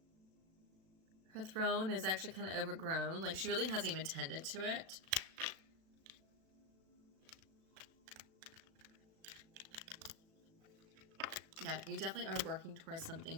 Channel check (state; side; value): late; left; 36 ms